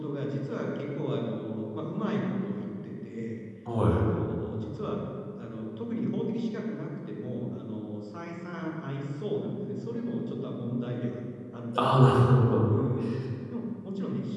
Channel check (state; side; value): identical; both; correlation 1.00